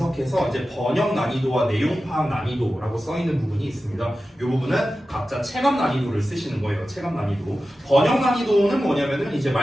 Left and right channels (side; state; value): both; normal; correlation 0.94